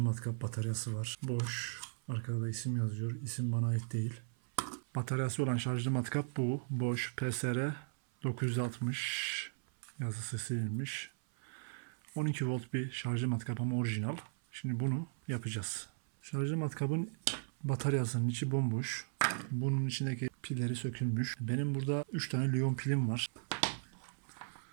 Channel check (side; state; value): left; silent; 53 dB below the other